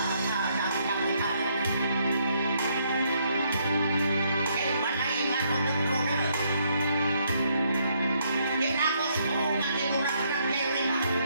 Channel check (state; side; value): inverted; both; correlation -0.72